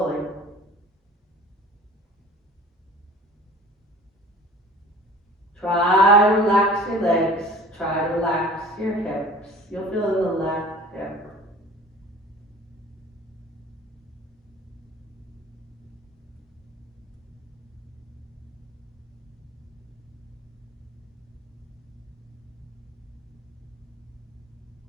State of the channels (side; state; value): both; normal; correlation 0.44